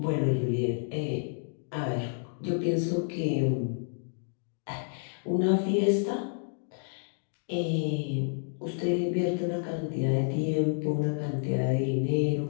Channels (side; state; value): right; silent; digital silence